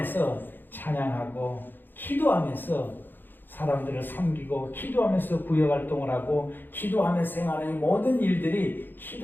찬양하고 기도하면서 사람들을 섬기고 기도하면서 구역활동을 하고 기도하면서 생활하는 이 모든 일들이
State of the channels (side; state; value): right; late; 0.093 ms